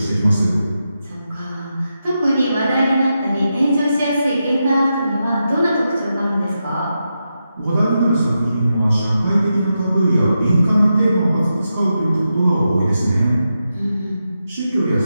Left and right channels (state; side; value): inverted; both; correlation -0.88